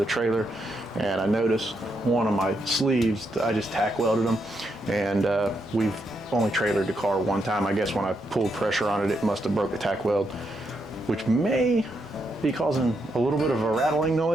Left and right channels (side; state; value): right; noise; rumble, 28 dB below the sound